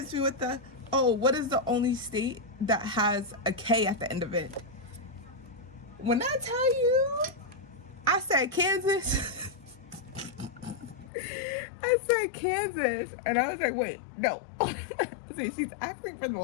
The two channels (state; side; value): drops out; right; at 11.1 s